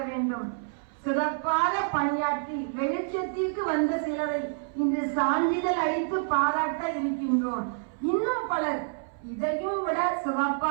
வேண்டும். சிறப்பாக பணியாற்றி வெளிச்சத்திற்கு வந்த சிலரை இன்று சான்றிதழ் அளித்து பாராட்ட இருக்கின்றோம். இன்னும் பலர் இதையும் விட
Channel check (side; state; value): left; silent; 59 dB below the other